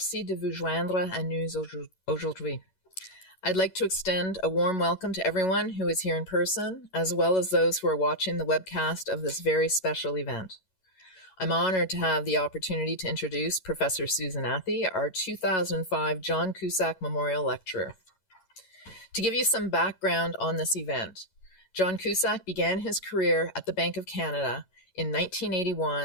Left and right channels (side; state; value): right; late; 11 ms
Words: de vous joindre à nous aujourd'hui. I'd like to extend a warm welcome to everyone who is here in person, as well as those who are watching the webcast of this very special event. I'm honored to have the opportunity to introduce Professor Susan Athey, our 2005 John Kuszczak Memorial Lecturer. To give you some background on this event, John Kuszczak began his career at the Bank of Canada in